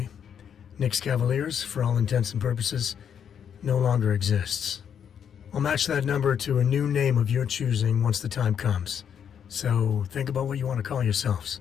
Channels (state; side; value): quieter; right; 8.2 dB